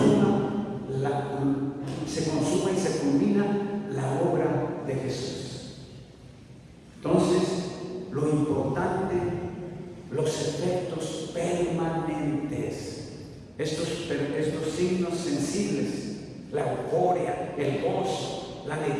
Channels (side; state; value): both; identical; correlation 1.00